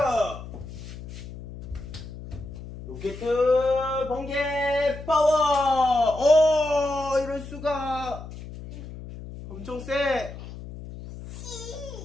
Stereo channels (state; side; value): noise; left; hum, 12 dB below the sound